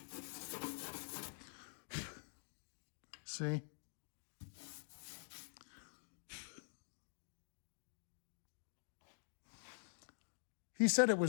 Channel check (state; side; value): silent; right; digital silence